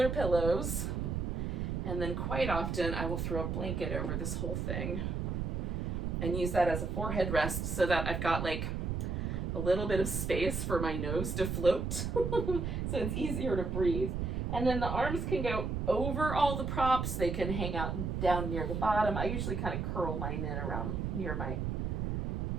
pillows. And then quite often I will throw a blanket over this whole thing and use that as a forehead rest so that I've got like a little bit of space for my nose to float. So it's easier to breathe. And then the arms can go over all the props. They can hang out down near the bottom. I usually kind of curl mine in around near my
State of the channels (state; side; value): noise; right; rumble, 1 dB below the sound